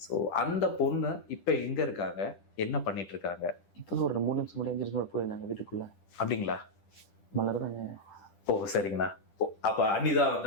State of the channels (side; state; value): right; late; 10 ms